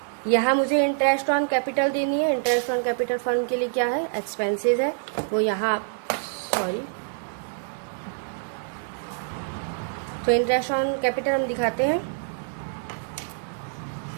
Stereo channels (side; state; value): left; silent; digital silence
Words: यहाँ मुझे इंटरेस्ट ऑन कैपिटल देनी है। इंटरेस्ट ऑन कैपिटल फर्म के लिए क्या है, एक्सपेंसेस है, वो यहाँ सॉरी। तो इंटरेस्ट ऑन कैपिटल हम दिखाते हैं।